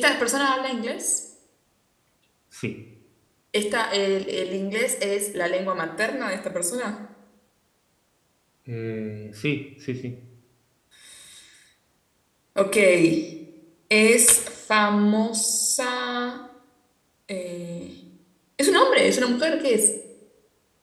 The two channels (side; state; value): both; identical; correlation 1.00